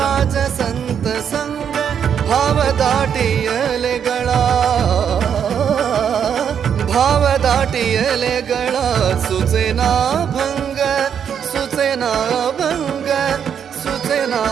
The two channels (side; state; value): left; quieter; 8.1 dB